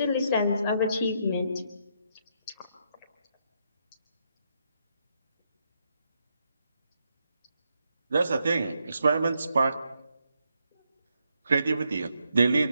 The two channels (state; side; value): inverted; both; correlation -0.78